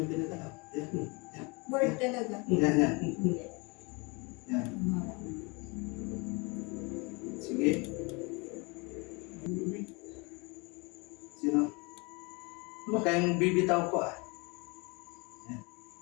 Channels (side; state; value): right; quieter; 28.7 dB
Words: pinagalaw. Yan. Board talaga. Yan, yan. Yan. Sige. Sino? Huwag kayong bibitaw po ah. Yan.